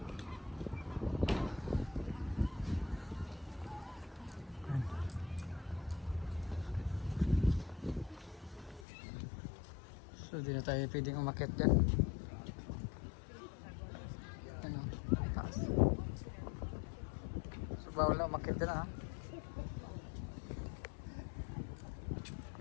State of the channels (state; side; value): drops out; right; at 8.8 s